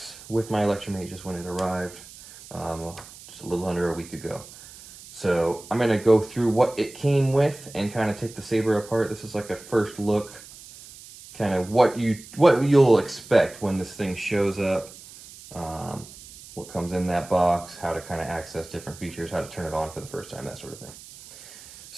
with my Electrum Aegis when it arrived just a little under a week ago. So I'm going to go through what it came with and kind of take the Saber apart. This is like a first look, kind of what you'll expect when this thing shows up, what comes in that box, how to kind of access different features, how to turn it on for the first time, that sort of thing.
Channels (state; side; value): noise; right; hiss, 18 dB below the sound